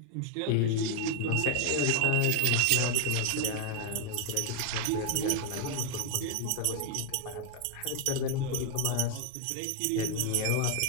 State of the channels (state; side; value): different; both; correlation 0.01